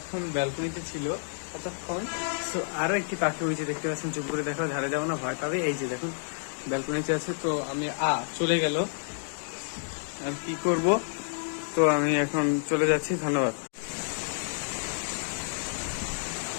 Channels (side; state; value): right; silent; digital silence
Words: ব্যালকনিতে ছিল কতক্ষণ। তো আরো একটি পাখি হয়েছে, দেখতে পাচ্ছেন। চুপ করে দেখো, ধারে যাবো না, ভয় পাবে। এই যে দেখুন ব্যালকনিতে আছে। তো আমি চলে গেল, আর কি করব। তো আমি এখন চলে যাচ্ছি, ধন্যবাদ।